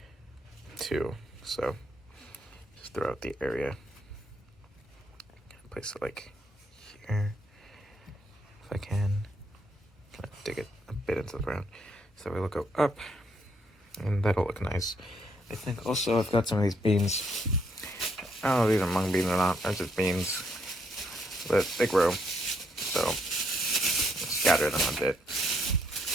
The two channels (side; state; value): both; normal; correlation 0.72